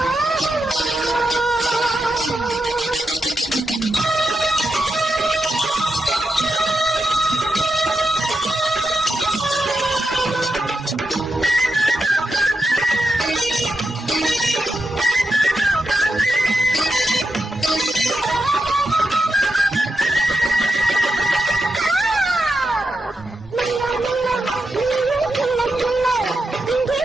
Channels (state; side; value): normal; both; correlation 0.87